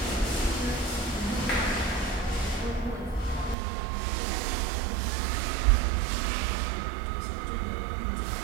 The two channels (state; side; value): drops out; left; at 3.6 s